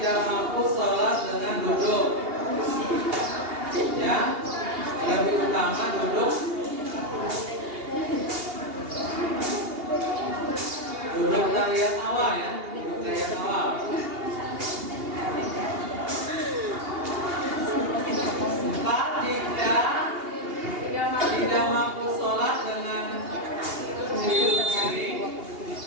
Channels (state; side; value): late; left; 2.8 ms